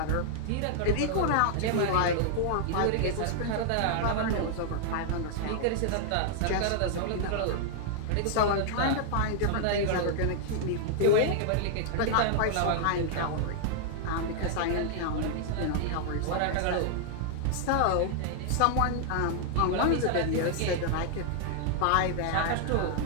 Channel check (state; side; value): different; both; correlation -0.01